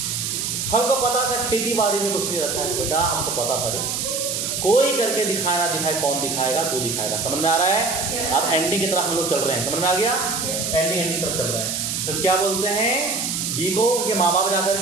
हमको पता था खेती बाड़ी में कुछ नहीं रखा है। बेटा हमको पता था रे, कोई करके दिखाना दिखाए, कौन दिखाएगा? तू दिखाएगा। समझ में आ रहा है? अब एंडिंग की तरफ हम लोग चल रहे हैं। समझ में आ गया? एंडिंग की तरफ चल रहे हैं। तो क्या बोलते हैं? बी को उनके माँ बाप जाकर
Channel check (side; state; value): right; noise; hiss, 2 dB below the sound